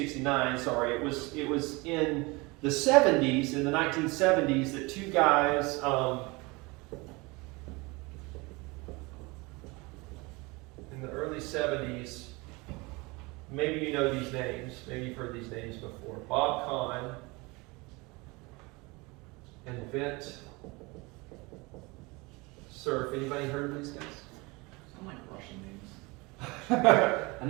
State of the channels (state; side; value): quieter; left; 25.2 dB